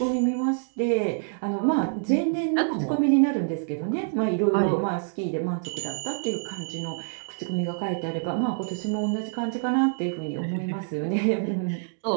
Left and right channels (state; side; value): silent; left; digital silence